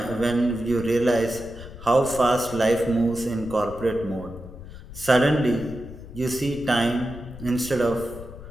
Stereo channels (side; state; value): left; noise; rumble, 14 dB below the sound